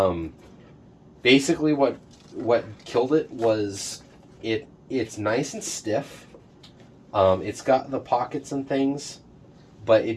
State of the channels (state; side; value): identical; both; correlation 1.00